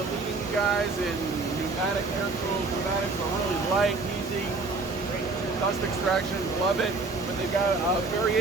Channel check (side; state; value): left; quieter; 3.7 dB